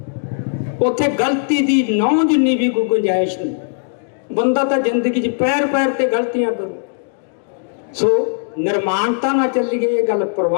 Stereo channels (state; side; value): silent; right; digital silence